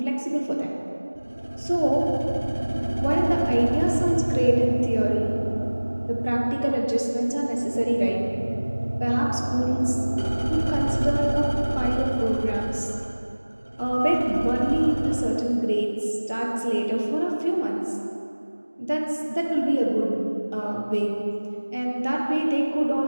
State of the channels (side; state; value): both; inverted; correlation -1.00